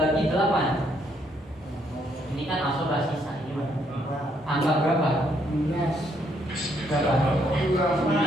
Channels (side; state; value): both; normal; correlation 0.71